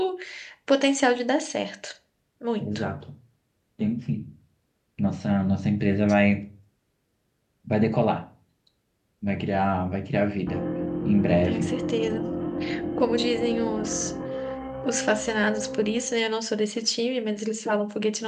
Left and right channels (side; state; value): both; identical; correlation 1.00